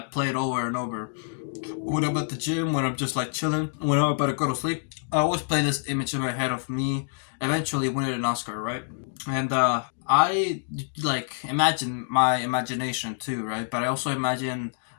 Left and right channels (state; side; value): silent; right; digital silence